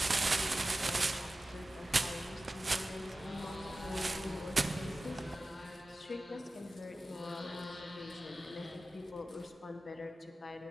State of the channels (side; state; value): both; normal; correlation 0.95